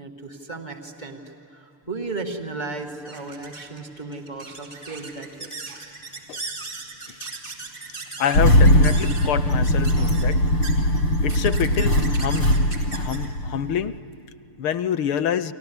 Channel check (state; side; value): late; right; 6.7 ms